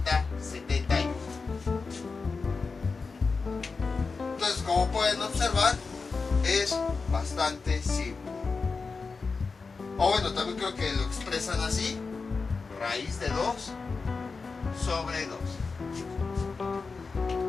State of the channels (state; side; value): quieter; right; 4.5 dB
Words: Entonces, como pueden observar, es bastante simple. O bueno, también creo que lo expresan así: raíz de 2 sobre 2.